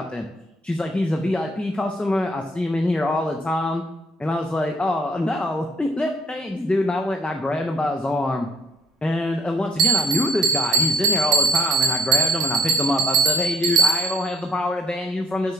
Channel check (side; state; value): both; normal; correlation 0.65